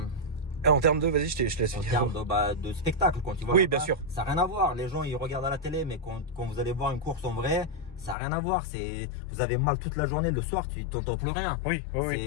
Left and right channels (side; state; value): right; drops out; at 8.2 s